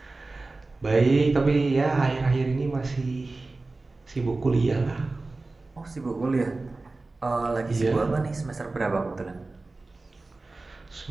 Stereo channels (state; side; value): quieter; left; 3.4 dB